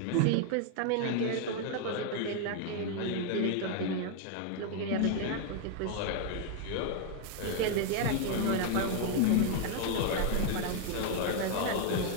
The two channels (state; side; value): different; both; correlation 0.00